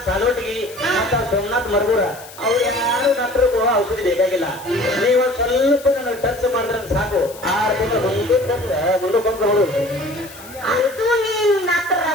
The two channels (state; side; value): noise; left; hiss, 18 dB below the sound